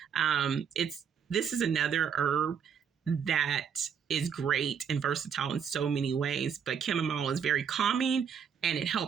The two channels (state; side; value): quieter; left; 7.4 dB